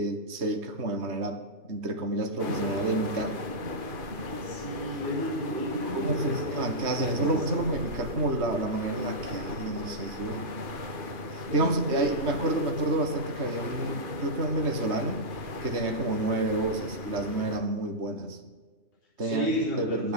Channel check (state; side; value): late; left; 2.5 ms